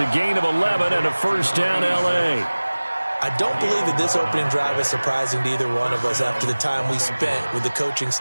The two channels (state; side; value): inverted; both; correlation -1.00